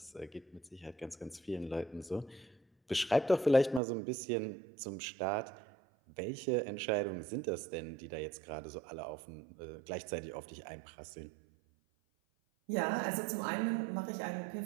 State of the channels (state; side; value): drops out; left; at 3.8 s